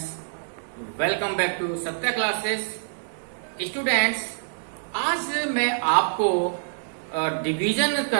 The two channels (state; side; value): silent; left; 61 dB below the other